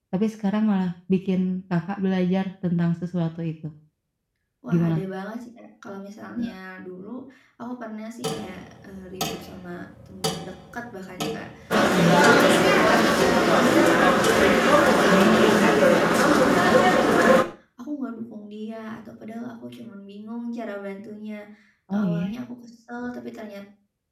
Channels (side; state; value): both; identical; correlation 1.00